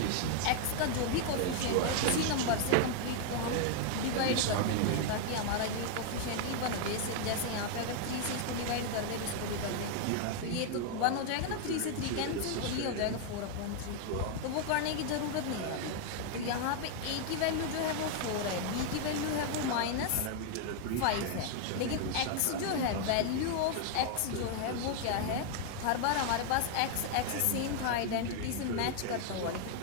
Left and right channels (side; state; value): both; different; correlation 0.00